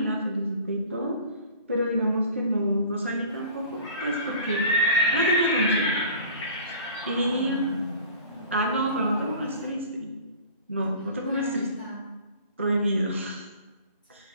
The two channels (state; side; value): inverted; both; correlation -0.45